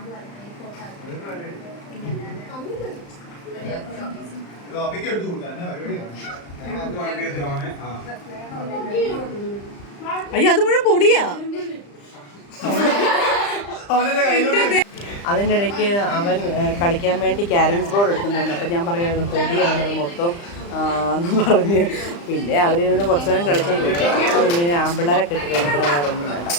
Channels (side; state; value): right; late; 35 ms